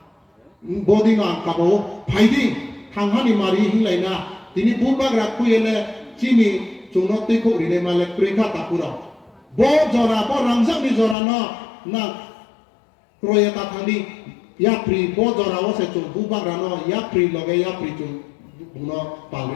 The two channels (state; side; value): drops out; right; at 11.2 s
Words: 보디노 안 까보 파이딩 강하니 마리 힐라이나 디니 부바그라 쿠엘레 지니 종노 띠코 리네 말레 크레카 타쿠로 bo jora bo rangsak ni jora no na kroya ta thandi ya pri bo jora wo se chu bu bang rano ya pri loge ya pri chu no